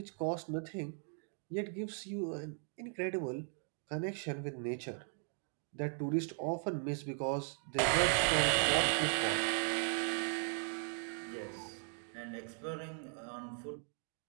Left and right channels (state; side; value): silent; left; 52 dB below the other